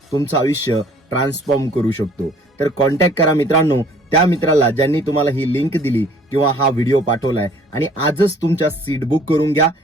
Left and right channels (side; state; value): both; normal; correlation 0.56